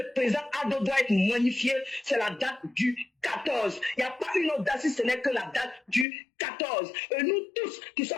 président Ado doit être magnifié, c'est la date du 14. Il n'y a pas une autre date si ce n'est que la date du 14. Et nous tous qui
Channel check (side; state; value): right; drops out; at 6.1 s